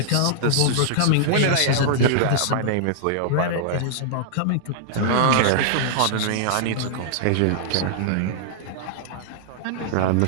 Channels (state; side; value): different; both; correlation -0.01